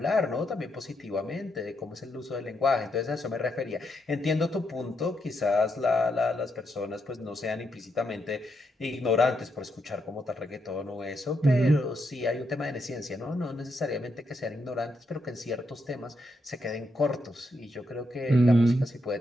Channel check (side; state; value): both; normal; correlation 0.80